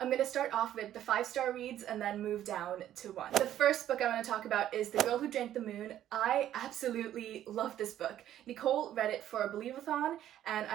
gonna start off with the 5-star reads and then move down to 1. The first book I want to talk about is The Girl Who Drank the Moon. I absolutely love this book. Nicole read it for a Believe-a-thon and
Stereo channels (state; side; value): quieter; left; 11.8 dB